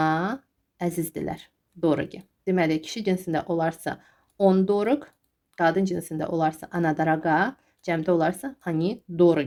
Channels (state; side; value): identical; both; correlation 1.00